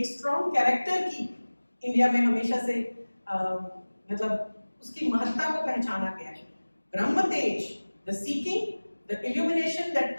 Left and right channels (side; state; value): both; inverted; correlation -1.00